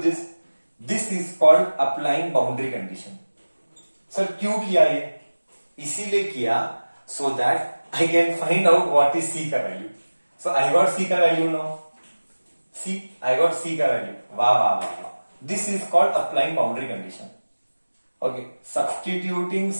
this? This is called applying boundary condition. Sir क्यों किया ये? इसीलिए किया so that I can find out what is c का value. So I got C का value now, C I got C का value, वाह वाह वाह वाह, this is called applying boundary condition. Okay, substituting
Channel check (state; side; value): inverted; both; correlation -1.00